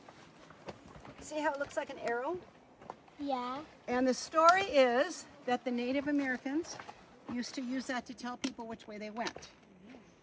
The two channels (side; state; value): both; identical; correlation 1.00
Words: See how it looks like an arrow? Yeah. And the story is that the Native Americans used to use that to tell people which way they went.